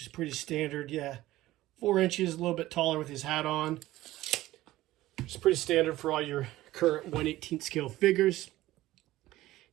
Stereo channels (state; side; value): quieter; left; 16.3 dB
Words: is pretty standard. Yeah, 4 inches, a little bit taller with his hat on. It's pretty standard for all your current 1/18 scale figures.